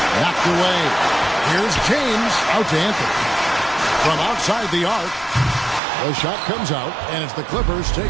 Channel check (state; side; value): drops out; left; at 5.8 s